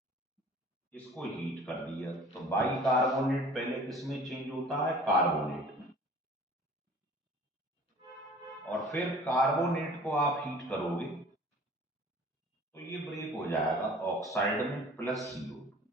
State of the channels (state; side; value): normal; both; correlation 0.47